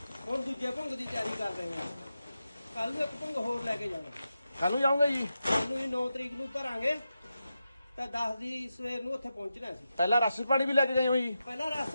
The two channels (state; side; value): inverted; both; correlation -0.89